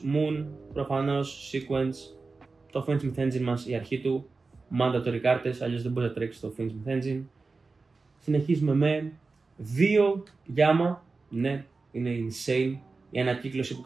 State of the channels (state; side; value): quieter; left; 4.0 dB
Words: Moon, προφανώς Sequence, το Fence Myth Engine μας, η αρχή του, mandatory κάρτες, αλλιώς δεν μπορεί να τρέξει το Fence Myth Engine. Συνεχίζουμε με 2 Gamma, ναι, είναι insane. Η ανακύκλωση που